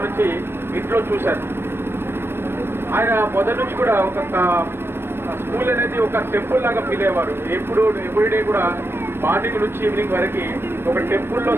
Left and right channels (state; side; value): late; left; 0.11 ms